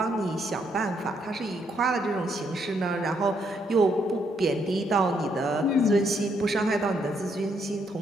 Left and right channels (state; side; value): normal; both; correlation 0.74